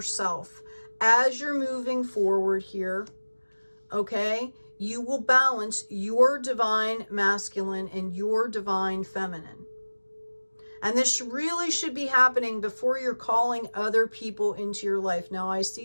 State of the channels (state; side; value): inverted; both; correlation -1.00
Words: As you're moving forward here, okay, you will balance your divine masculine and your divine feminine. And this really should be happening before you're calling other people into your life. Now, I